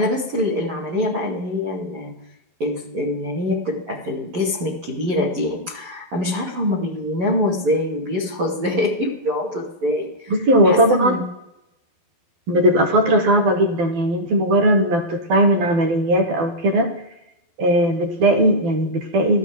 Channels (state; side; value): late; left; 12 ms